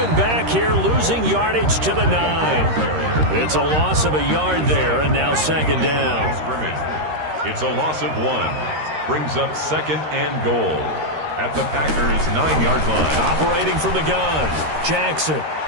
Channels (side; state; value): left; late; 13 ms